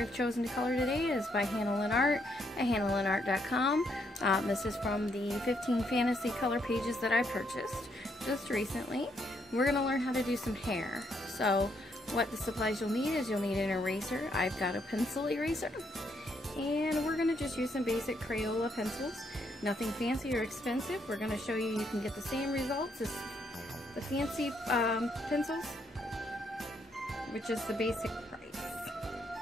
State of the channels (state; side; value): normal; both; correlation 0.74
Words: chosen to color today is by Hannah Lynn Art at hannahlynnart.com. This is from the 15 fantasy color pages that I purchased just recently. We're going to learn how to do some hair. So what the supplies you'll need is you'll need an eraser. I've got a pencil eraser. And we're going to just use some basic Crayola pencils. Nothing fancy or expensive. We're going to show you can get the same results as the fancy pencils, which is the basic price.